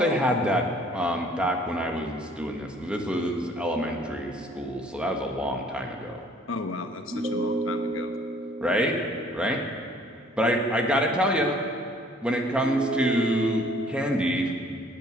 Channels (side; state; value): both; normal; correlation 0.57